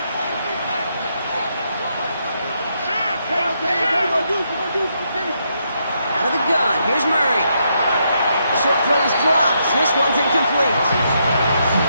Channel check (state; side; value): inverted; both; correlation -0.78